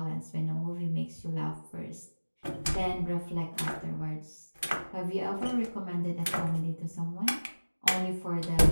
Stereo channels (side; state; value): both; inverted; correlation -1.00